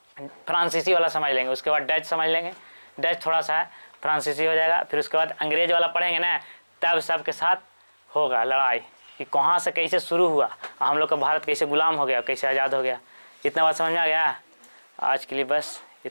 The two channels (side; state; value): both; inverted; correlation -1.00